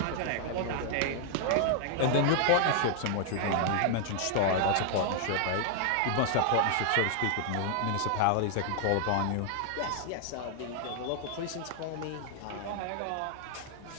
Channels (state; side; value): different; both; correlation 0.00